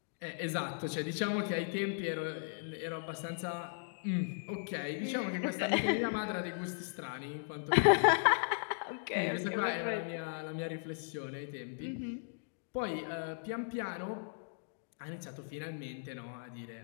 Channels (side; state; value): right; silent; digital silence